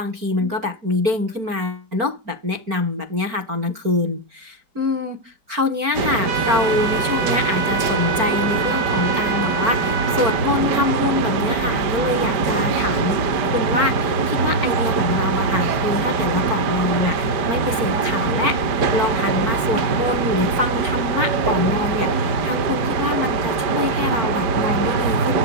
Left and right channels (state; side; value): late; left; 4.4 ms